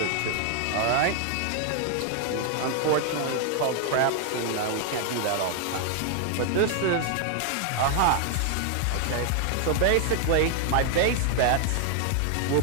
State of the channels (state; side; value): different; both; correlation 0.00